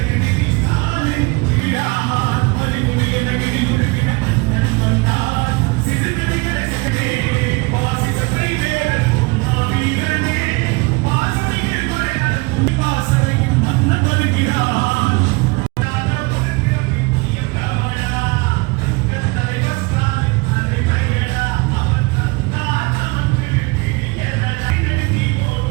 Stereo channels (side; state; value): left; quieter; 26.8 dB